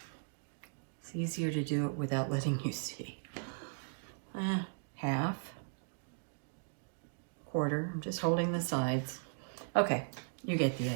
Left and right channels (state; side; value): silent; left; digital silence